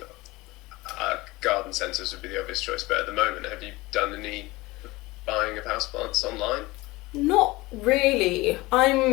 garden centres would be the obvious choice, but at the moment, have you done any buying of houseplants online? Not really.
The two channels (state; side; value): quieter; right; 21.0 dB